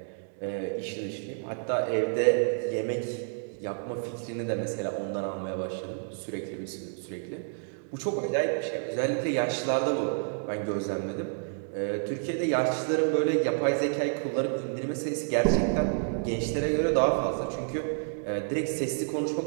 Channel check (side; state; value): left; silent; digital silence